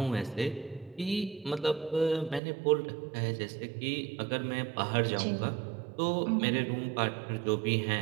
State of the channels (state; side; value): drops out; left; at 2.4 s